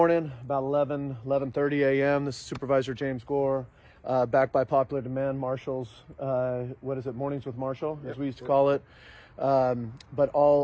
about 11:30 a.m. This is Supervisor James Gore, back by popular demand, Marshall's, Mornings with Marshall, as we used to call it. But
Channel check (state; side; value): identical; both; correlation 1.00